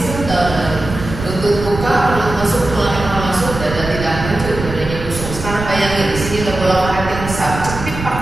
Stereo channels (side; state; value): right; noise; rumble, 8 dB below the sound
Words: down. Lutut buka, perut masuk, tulang masuk, dada tidak maju, dadanya busuk. Sekarang bayangin di sini ada bola karet yang besar. Cepit